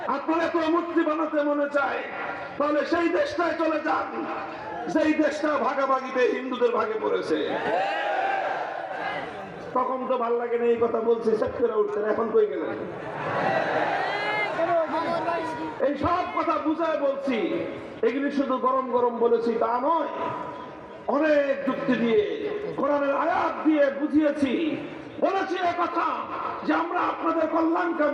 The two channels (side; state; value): both; identical; correlation 1.00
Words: আপনার এত মূর্তি বানাতে মনে চায়, তাহলে সেই দেশটায় চলে যান, যেই দেশটা ভাগাভাগিতে হিন্দুদের ভাগে পড়েছে। তখন তো ভাল লাগে না এই কথা বলছি, সেট করে উঠছেন, এখন কই গেলেন? এই সব কথা বুঝায় বলছি, এগুলি শুধু গরম গরম বলেছি তা নয়, অনেক যুক্তি দিয়ে, কোরআনের আয়াত দিয়ে বুঝিয়েছি। বলেছি কথা যে আমরা আপনাদের